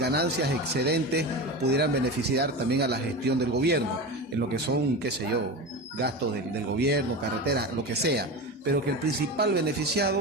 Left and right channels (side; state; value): both; normal; correlation 0.25